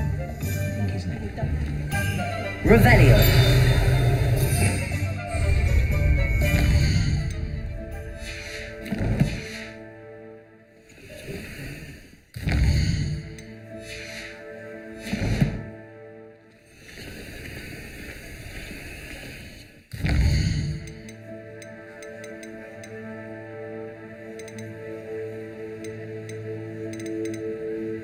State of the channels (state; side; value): identical; both; correlation 1.00